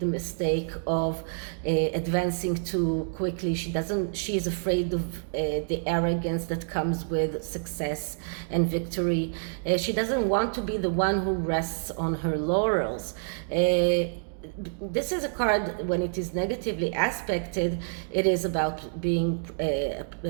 mistake of advancing too quickly. She is afraid of the arrogance that comes with success and victory. She doesn't want to be the one who rests on her laurels. This is a card, when it is negatively aspected, it is about being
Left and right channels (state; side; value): silent; left; digital silence